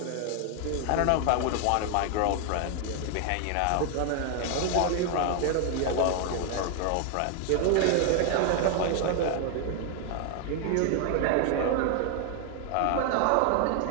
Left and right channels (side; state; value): both; different; correlation 0.01